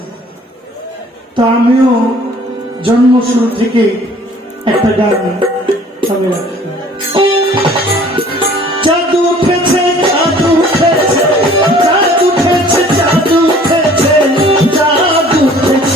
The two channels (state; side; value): normal; both; correlation 0.53